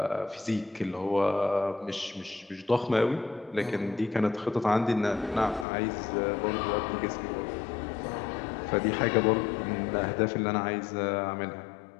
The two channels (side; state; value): right; drops out; at 5.7 s